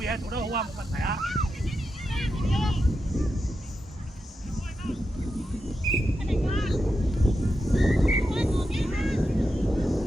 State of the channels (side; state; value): both; normal; correlation 0.88